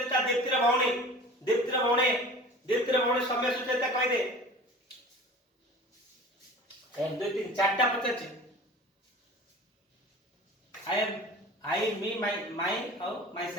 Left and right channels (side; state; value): both; normal; correlation 0.40